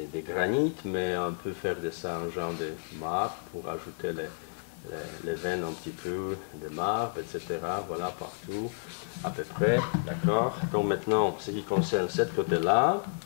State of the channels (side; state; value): right; silent; 57 dB below the other